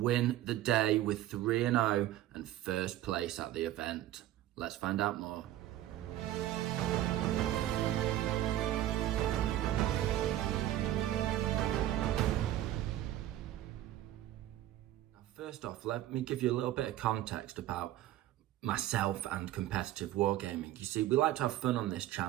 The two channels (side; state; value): left; quieter; 13.6 dB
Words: the day with 3-0 and first place at the event. Let's find out more. Now, first off, let me give you a little bit of context about myself and competitive wargaming. You see, we like to have fun on this